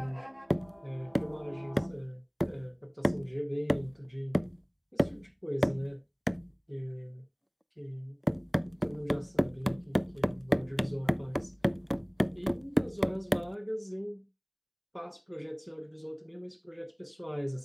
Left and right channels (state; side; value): identical; both; correlation 1.00